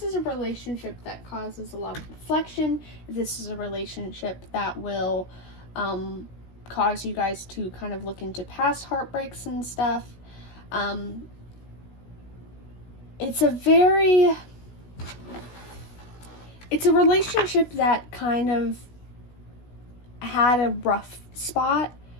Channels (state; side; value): late; right; 16 ms